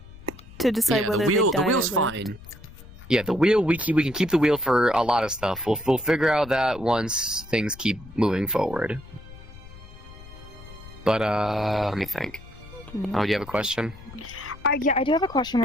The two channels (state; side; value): noise; left; rumble, 18 dB below the sound